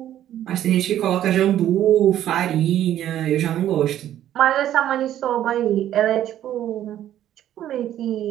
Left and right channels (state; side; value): quieter; left; 11.8 dB